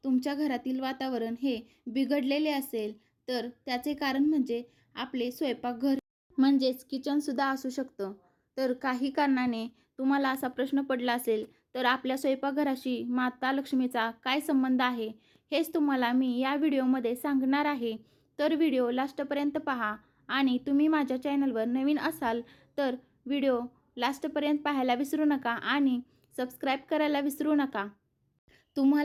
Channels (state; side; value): identical; both; correlation 1.00